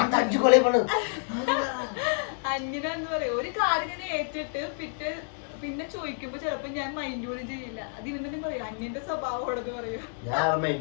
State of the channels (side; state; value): right; silent; digital silence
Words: അന്യനെന്ന് പറയാ. ഒരു കാര്യം ഞാൻ ഏറ്റിട്ട് പിറ്റേ പിന്നെ ചോദിക്കുമ്പോ ചിലപ്പോ ഞാൻ മൈൻഡ് പോലും ചെയ്യില്ല. അത് ഇവൻ തന്നെ പറയും അന്യന്റെ സ്വഭാവമാണെന്ന് പറയും. ഞാൻ